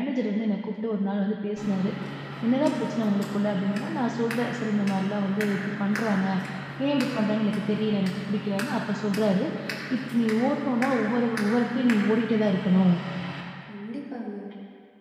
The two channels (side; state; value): both; identical; correlation 1.00